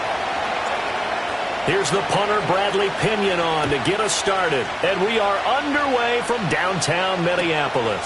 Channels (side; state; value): both; identical; correlation 1.00